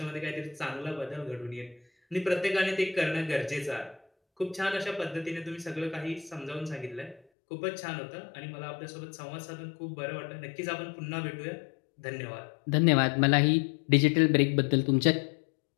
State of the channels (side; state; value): right; drops out; at 7.2 s